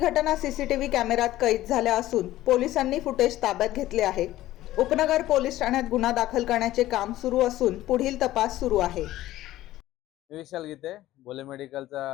सीसीटीव्ही कॅमेऱ्यात कैद झाल्या असून पोलिसांनी फुटेज ताब्यात घेतले आहे। उपनगर पोलीस ठाण्यात गुन्हा दाखल करण्याचे काम सुरू असून पुढील तपास सुरू आहे। विशाल गीते, भोले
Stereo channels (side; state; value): right; quieter; 15.1 dB